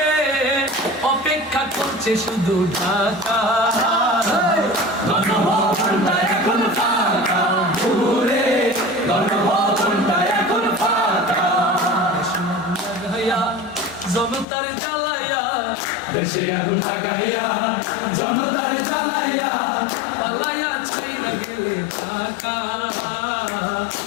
অপেক্ষা করছে শুধু ঢাকা, গণভবনটা এখন ফাঁকা। বুবুরে গণভবনটা এখন ফাঁকা। লাগাইয়া জনতার জ্বালাইয়া, দেশে আগুন লাগাইয়া জনতার জ্বালাইয়া পালাইয়া ছাইরা গেলে ঢাকা,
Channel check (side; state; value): right; drops out; at 14.5 s